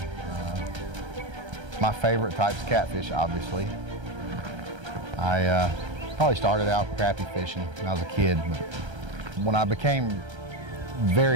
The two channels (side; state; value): left; late; 1.3 ms